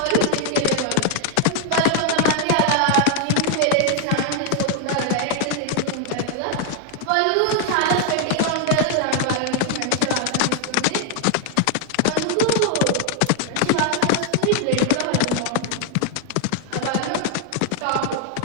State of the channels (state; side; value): different; both; correlation 0.00